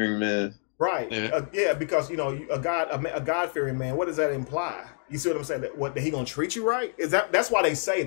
man? Right. Yeah, because a God-fearing man. What does that imply? You see what I'm saying? That he gonna treat you right? That's why they say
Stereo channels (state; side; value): silent; right; 60 dB below the other